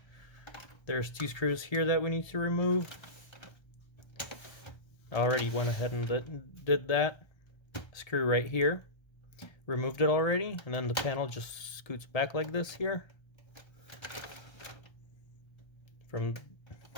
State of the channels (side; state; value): right; late; 1.3 ms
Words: There's two screws here that we need to remove. I already went ahead and did that. Screw right here. Removed it already, and then the panel just scoots back like this here.